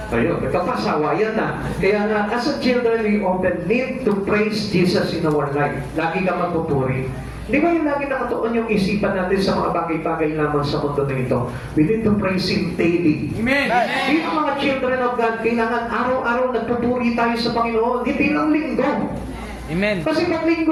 Ayun, nagkapasawayan na. Kaya nga, as a children, we often need to praise Jesus in our life. Lagi ka magpupuri. Di ba yung lagi nakatuon yung isipan natin sa mga bagay-bagay lamang sa mundo na ito? We need to praise Him daily. Amen. Dito mga children of God, kailangan araw-araw nagpupuri tayo sa Panginoon, hindi lang linggo. Amen. Kasi pag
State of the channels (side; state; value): both; identical; correlation 1.00